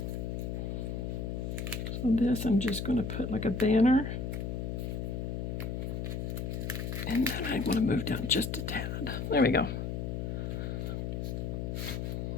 So this I'm just going to put like a banner. And then I want to move down just a tad. There we go.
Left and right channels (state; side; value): noise; left; hum, 3 dB below the sound